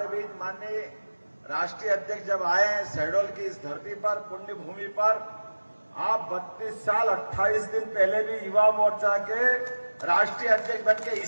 बीच माननीय राष्ट्रीय अध्यक्ष जब आए शहडोल की इस धरती पर, पुण्य भूमि पर, आप 32 साल 28 दिन पहले भी युवा मोर्चा के राष्ट्रीय अध्यक्ष बनके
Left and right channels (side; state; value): both; inverted; correlation -1.00